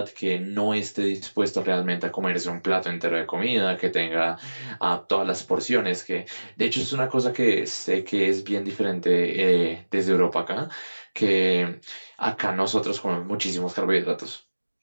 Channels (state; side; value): inverted; both; correlation -1.00